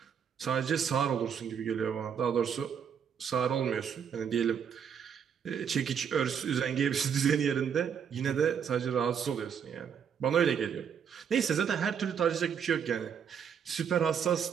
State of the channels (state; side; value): quieter; left; 7.6 dB